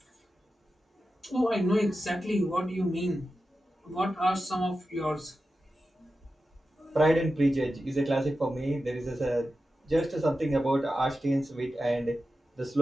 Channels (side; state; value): both; normal; correlation 0.92